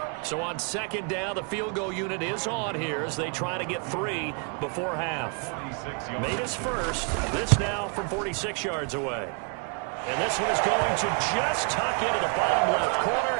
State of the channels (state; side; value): quieter; left; 37.0 dB